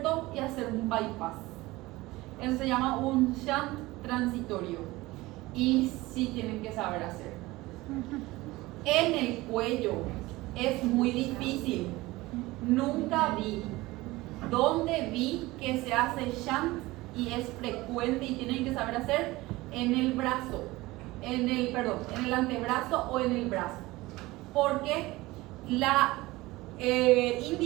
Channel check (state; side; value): quieter; left; 19.9 dB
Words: y hacer un bypass. Eso se llama un shunt transitorio y sí tienen que saber hacer. En el cuello es muy difícil. Nunca vi. ¿Dónde vi que se hace shunt y es frecuente y tienen que saber hacer? En el brazo, en el antebrazo o en el brazo. Porque la